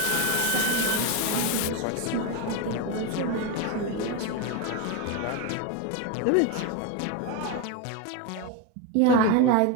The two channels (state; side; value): different; both; correlation 0.03